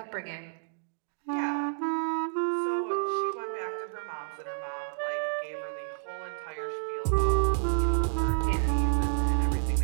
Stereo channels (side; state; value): left; silent; digital silence